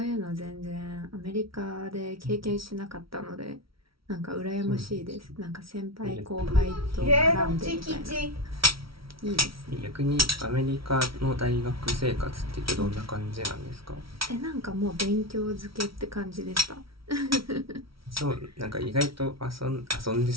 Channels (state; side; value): late; left; 0.75 ms